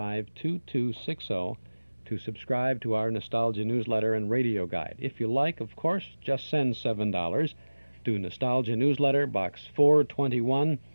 to subscribe to our Nostalgia newsletter and radio guide. If you like, of course, just send $7 to Nostalgia Newsletter, Box 421,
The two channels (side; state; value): both; inverted; correlation -1.00